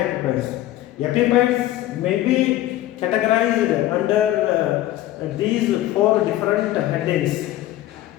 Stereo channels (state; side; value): quieter; right; 14.7 dB